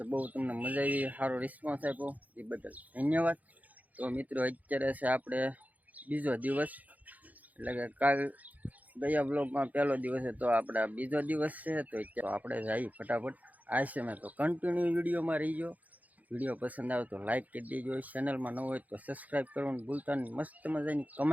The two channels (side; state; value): left; late; 0.078 ms